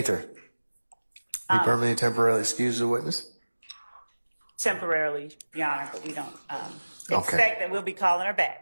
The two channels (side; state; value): both; inverted; correlation -1.00